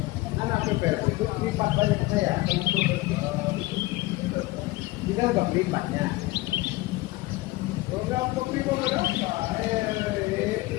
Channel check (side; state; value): right; quieter; 19.9 dB